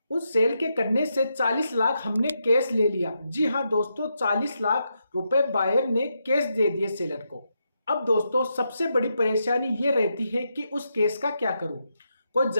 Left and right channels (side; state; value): both; inverted; correlation -0.83